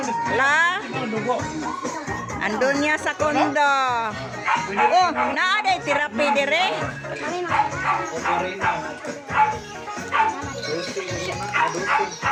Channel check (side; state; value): both; identical; correlation 1.00